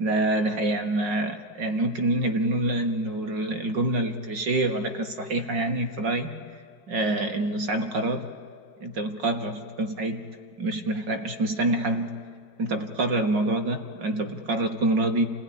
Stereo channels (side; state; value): left; late; 5.5 ms